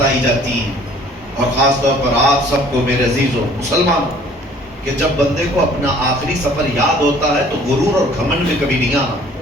جاتی ہیں، اور خاص طور پر آپ سب کو میرے عزیزوں مسلمانوں، کہ جب بندے کو اپنا آخری سفر یاد ہوتا ہے تو غرور اور گھمنڈ میں کبھی نہیں آنا۔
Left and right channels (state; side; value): normal; both; correlation 0.54